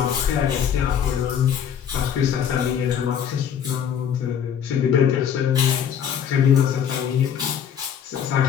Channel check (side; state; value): right; quieter; 8.5 dB